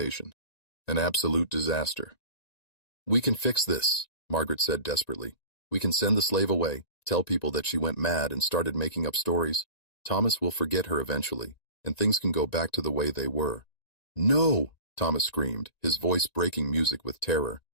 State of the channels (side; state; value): right; late; 1.9 ms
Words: "An absolute disaster." "We can fix this," Margaret said desperately. "We can send the slave away, tell people that she went mad and started making up stories. Thomas will forget her eventually, and things can go back to the way they were." "No!" Thomas screamed, his voice breaking music with terror.